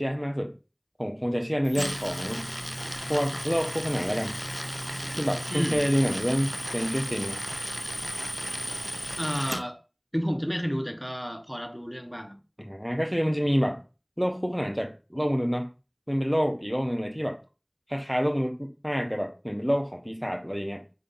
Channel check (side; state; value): both; identical; correlation 1.00